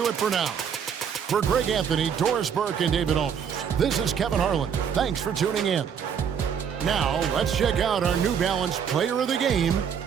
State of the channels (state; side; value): quieter; left; 7.5 dB